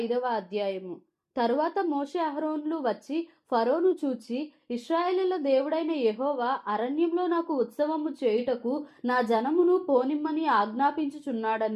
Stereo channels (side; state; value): both; identical; correlation 1.00